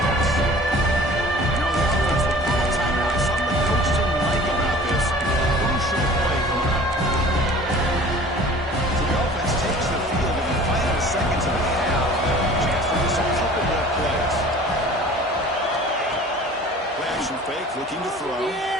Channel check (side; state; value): both; normal; correlation 0.46